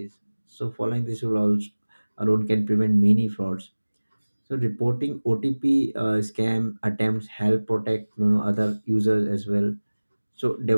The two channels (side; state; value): both; inverted; correlation -1.00